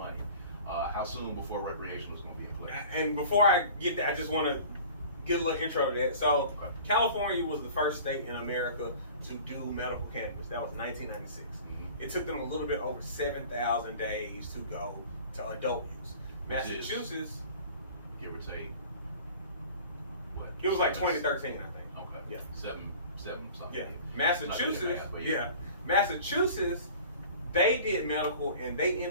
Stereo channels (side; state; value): both; inverted; correlation -0.43